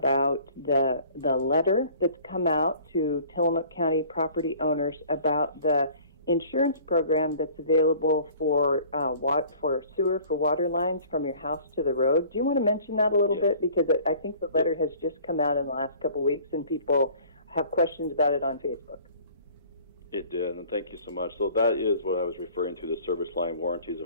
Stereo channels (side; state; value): both; inverted; correlation -0.50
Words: the letter that's come out to Tillamook County property owners about the insurance program that's available for sewer, for water lines from your house to the road. Do you want to mention that a little bit? Because I think the letter has just come out in the last couple of weeks, and people have questions about it on Facebook. It did, and thank you so much. So that is what I was referring to, the Service Line Warranties of